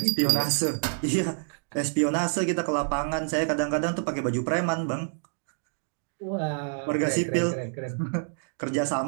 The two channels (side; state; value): left; silent; digital silence